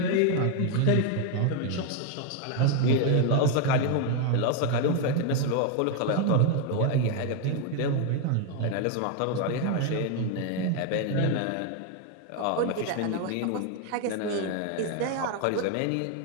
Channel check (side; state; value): both; different; correlation 0.01